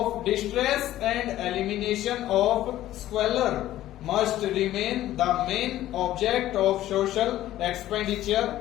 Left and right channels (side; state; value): right; quieter; 13.9 dB